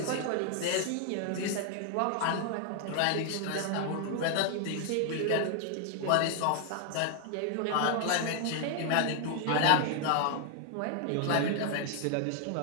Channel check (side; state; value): both; different; correlation 0.00